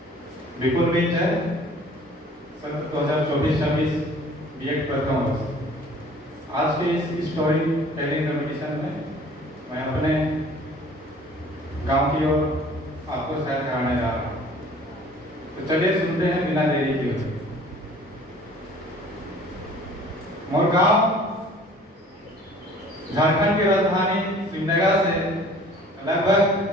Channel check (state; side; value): normal; both; correlation 0.50